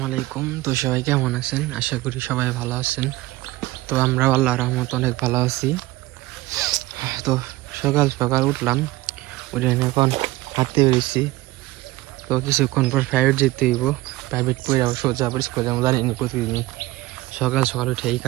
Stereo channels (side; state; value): left; quieter; 18.6 dB